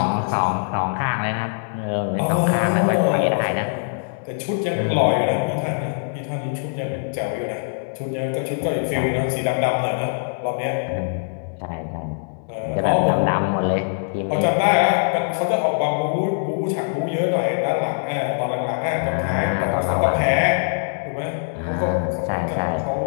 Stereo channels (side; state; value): right; silent; digital silence